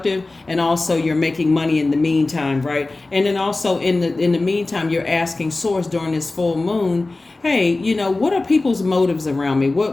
and also you're making money in the meantime, right? And then also in the meantime, you're asking source during this full moon, hey, what are people's motives around me?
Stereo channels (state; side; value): quieter; right; 3.2 dB